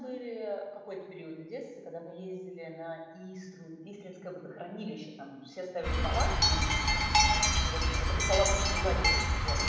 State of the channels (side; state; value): both; identical; correlation 1.00